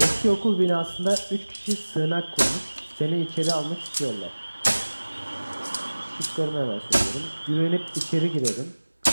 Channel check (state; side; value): inverted; both; correlation -1.00